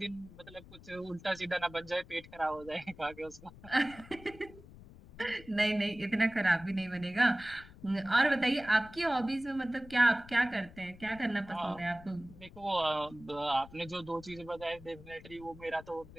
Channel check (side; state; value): left; noise; rumble, 19 dB below the sound